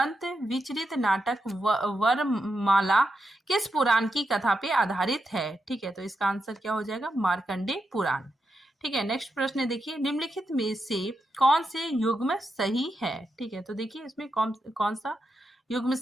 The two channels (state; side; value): normal; both; correlation 0.85